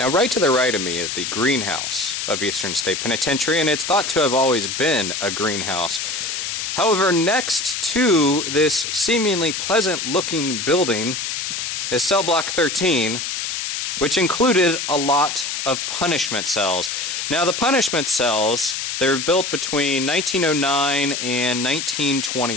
right to the right of me is the greenhouse of Eastern State Penitentiary, and it's thought to have always been a greenhouse. However, next to this seemingly pleasant-looking building is Cellblock 13, which included a lot of punishment cells. Now, the punishment cells, they were built between 1909 and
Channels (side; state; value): left; noise; hiss, 3 dB below the sound